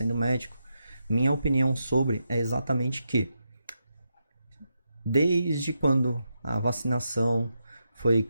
médico, minha opinião sobre é exatamente que desde quando a vacinação foi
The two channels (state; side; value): inverted; both; correlation -0.85